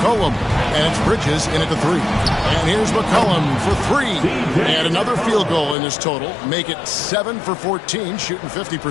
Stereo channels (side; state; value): right; drops out; at 5.8 s